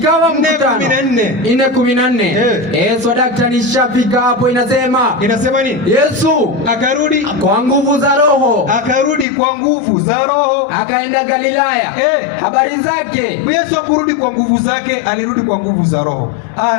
mkutano 4:14. Yesu daktari shafika hapo. Inasema nini? Yesu akarudi kwa nguvu za Roho. Akaenda Galilaya. Habari zake. Yesu akurudi kwa nguvu zake, alirudi kwa nguvu za Roho.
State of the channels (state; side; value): drops out; right; at 9.2 s